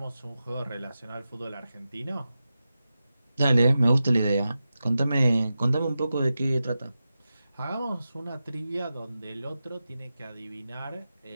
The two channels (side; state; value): both; inverted; correlation -0.92